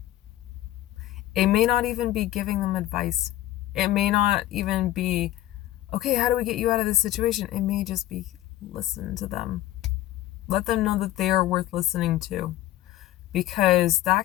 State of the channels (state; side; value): quieter; right; 14.5 dB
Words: It may not even be giving them advice. It may not even be, okay, how do we get you out of this situation? It may just be, listen to them. Let them know that they are worth listening to. Because